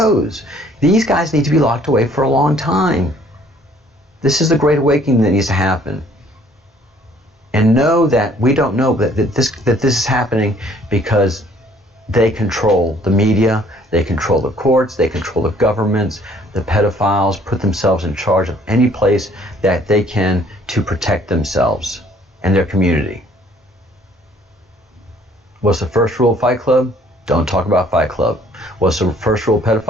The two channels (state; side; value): normal; both; correlation 0.59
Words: These guys need to be locked away for a long time. This is the great awakening that needs to happen. And know that we don't know that this is happening because they control the media, they control the courts, they control the governments. The pedophiles put themselves in charge of any place that they can to protect themselves and their community. What's the first rule of Fight Club? Don't talk about Fight Club. What's the first rule of